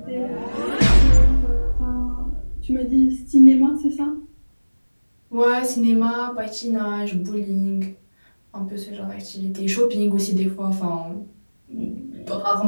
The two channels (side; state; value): both; inverted; correlation -1.00